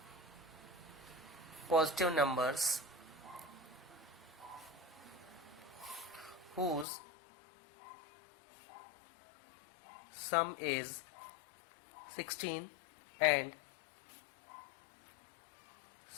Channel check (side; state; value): right; drops out; at 6.9 s